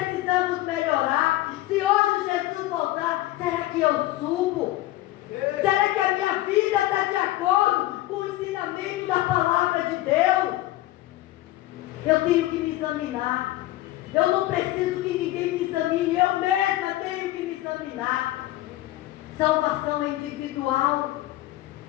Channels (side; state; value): right; quieter; 16.2 dB